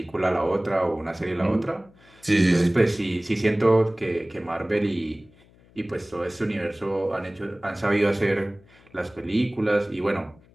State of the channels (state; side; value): noise; left; hum, 28 dB below the sound